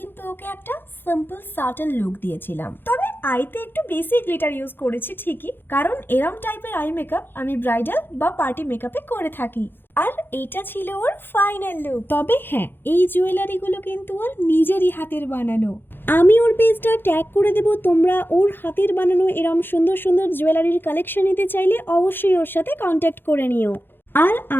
ওকে একটা সিম্পল সাটল লুক দিয়েছিলাম, তবে আইতে একটু বেশি গ্লিটার ইউজ করেছি ঠিকই, কারণ এরম টাইপের আই মেকআপ আমি ব্রাইডাল বা পার্টি মেকআপে করে থাকি। আর এটা ছিল ওর ফাইনাল লুক। তবে হ্যাঁ, এই জুয়েলারিগুলো কিন্তু ওর নিজেরই হাতের বানানো। আমি ওর পেজটা ট্যাগ করে দেব, তোমরা ওর হাতের বানানো এরম সুন্দর সুন্দর জুয়েলারির কালেকশন নিতে চাইলে অবশ্যই ওর সাথে কন্ট্যাক্ট করে নিও। আর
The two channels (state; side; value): late; right; 0.10 ms